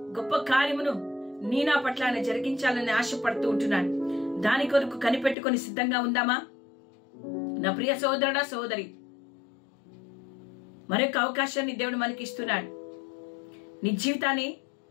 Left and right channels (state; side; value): drops out; right; at 5.4 s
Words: గొప్ప కార్యమును నీ నా పట్ల ఆయన జరిగించాలని ఆశపడుతూ ఉంటున్నాను. దాని కొరకు కనిపెట్టుకొని సిద్ధంగా ఉందామా? నా ప్రియ సోదరుడా, సోదరి, మరొక అవకాశాన్ని దేవుడు మనకి ఇస్తున్నాడు. నీ జీవితాన్ని